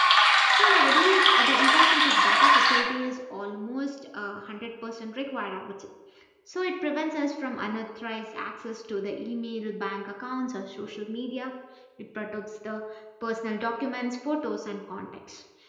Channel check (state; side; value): identical; both; correlation 1.00